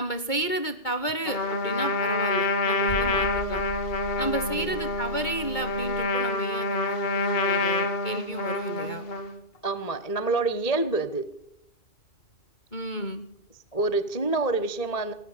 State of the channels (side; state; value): right; late; 2.2 ms